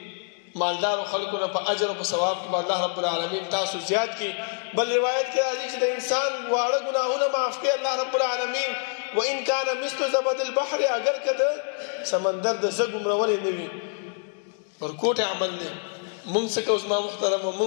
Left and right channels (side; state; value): right; silent; 55 dB below the other